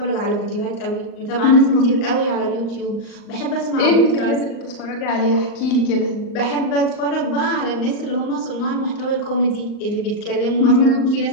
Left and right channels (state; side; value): late; right; 39 ms